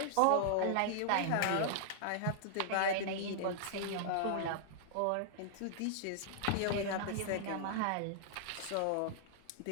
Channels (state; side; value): different; both; correlation -0.01